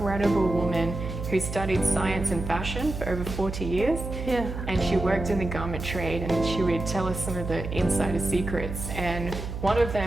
woman who studied science and fashion for over 40 years. And she worked in the garment trade, and she would tell us some of the insider secrets. And one of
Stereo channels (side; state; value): right; noise; hum, 6 dB below the sound